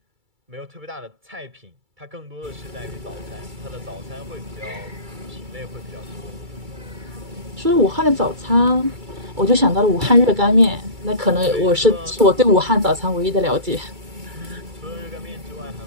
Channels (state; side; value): late; left; 2.3 ms